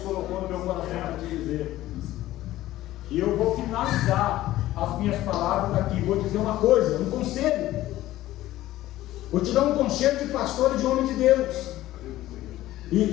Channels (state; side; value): quieter; right; 15.2 dB